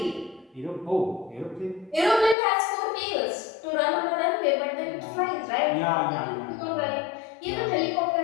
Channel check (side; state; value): right; drops out; at 2.4 s